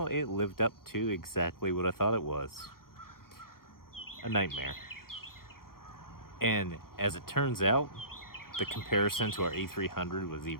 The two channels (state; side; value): late; right; 0.92 ms